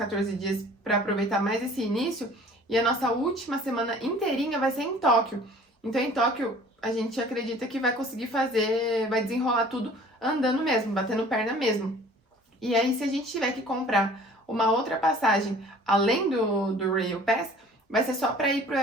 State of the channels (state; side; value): normal; both; correlation 0.49